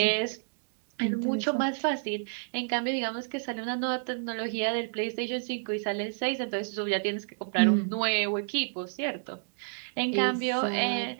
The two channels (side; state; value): left; silent; digital silence